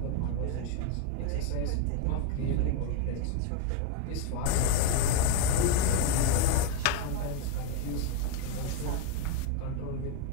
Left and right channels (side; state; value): both; different; correlation 0.02